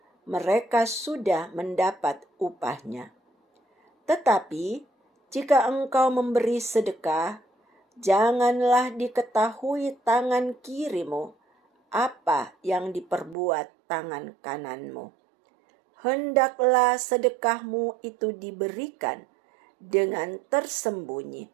mereka sudah mendapat upahnya. Tetapi jika engkau memberi sedekah, janganlah diketahui tangan kirimu apa yang diperbuat tangan kananmu. Hendaklah sedekahmu itu diberikan dengan tersembunyi,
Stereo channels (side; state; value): left; drops out; at 13.4 s